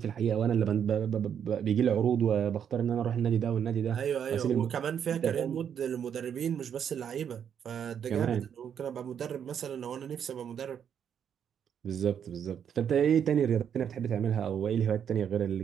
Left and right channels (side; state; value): left; quieter; 8.3 dB